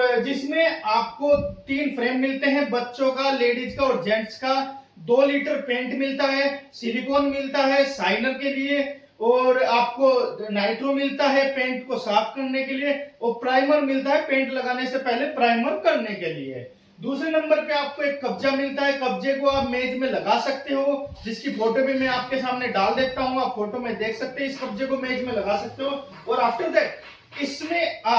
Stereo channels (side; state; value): both; identical; correlation 1.00